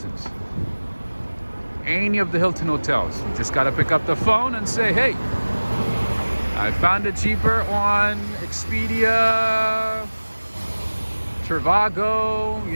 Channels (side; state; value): both; inverted; correlation -1.00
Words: Any of the Hilton hotels, you just gotta pick up the phone and say, hey, I found it cheaper on Expedia, Trivago,